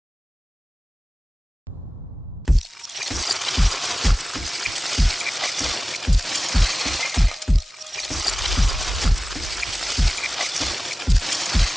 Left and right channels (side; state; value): both; normal; correlation 0.97